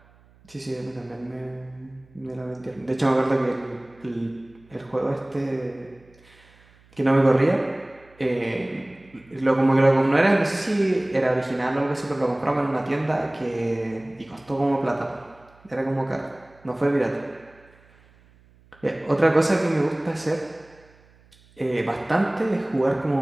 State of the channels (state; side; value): noise; right; hum, 29 dB below the sound